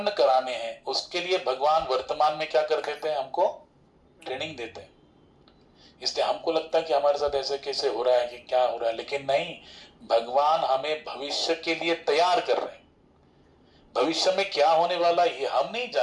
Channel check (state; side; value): identical; both; correlation 1.00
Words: कराने हैं, उसके लिए भगवान वर्तमान में क्या कर देते हैं, हमको ट्रेनिंग देते हैं। इसलिए हमको लगता है कि हमारे साथ ऐसे कैसे हो रहा है, कि क्या हो रहा है, लेकिन नहीं, भगवान हमें भविष्य के लिए तैयार कर रहे हैं। भविष्य में क्या होने वाला ये हम नहीं